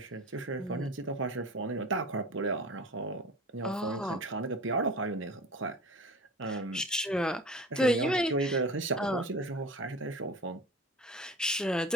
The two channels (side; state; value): both; normal; correlation 0.37